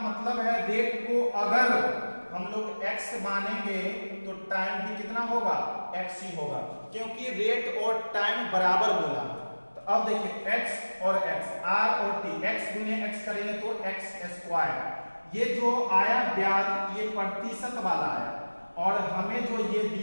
मतलब है रेट को अगर हम लोग x मानेंगे तो टाइम भी कितना होगा x ही होगा, क्योंकि रेट और टाइम बराबर बोला। तो अब देखिए x और x, r और t, x गुने x करेंगे तो x²। ये जो आया ब्याज ये प्रतिशत वाला आया, और हमें जो ये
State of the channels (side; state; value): both; inverted; correlation -1.00